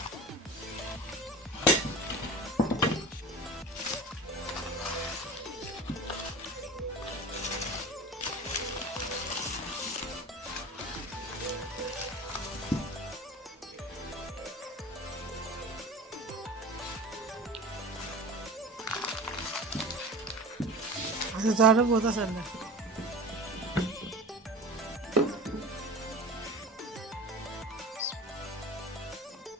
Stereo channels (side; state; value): both; normal; correlation 0.34